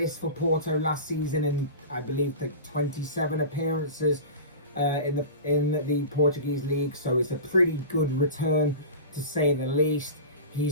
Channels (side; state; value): both; inverted; correlation -0.32